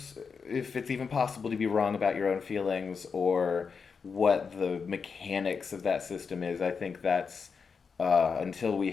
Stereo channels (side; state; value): right; quieter; 5.6 dB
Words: if it's even possible to be wrong about your own feelings or what the mechanics of that system is. I think that's, until we